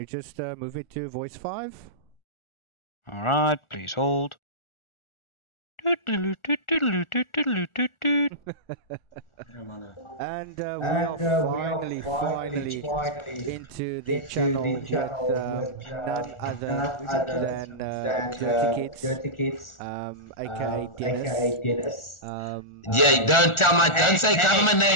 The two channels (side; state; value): right; late; 1.4 ms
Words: just move it to voice 5? Alright, please hold. And we are finally into the channel with none other than Dirty Kids, aka Dennis. Yeah, don't say government